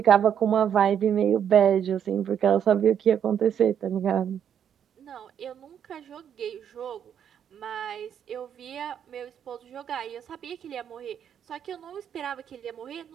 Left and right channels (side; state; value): left; quieter; 8.8 dB